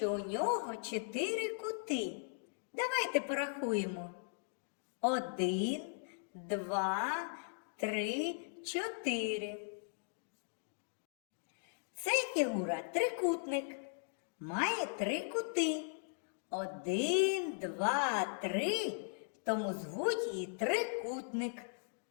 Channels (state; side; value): silent; right; digital silence